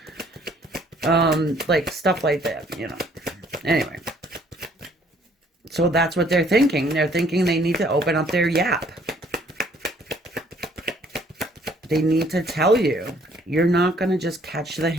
Like stuff like that, Anyway. So that's what they're thinking. They're thinking they need to open up their yap. They need to tell you. You're not going to just catch the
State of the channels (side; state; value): both; normal; correlation 0.61